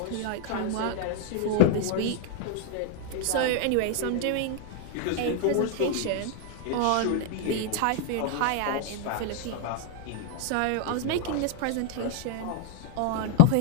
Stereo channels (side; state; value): both; different; correlation 0.00